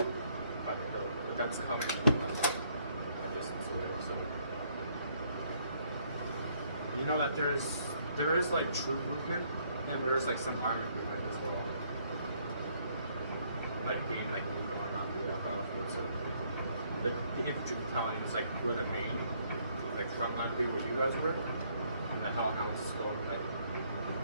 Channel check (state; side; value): inverted; both; correlation -0.68